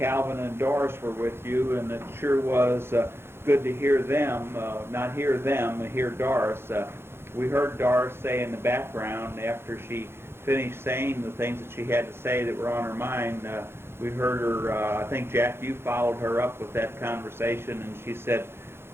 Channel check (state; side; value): late; left; 0.12 ms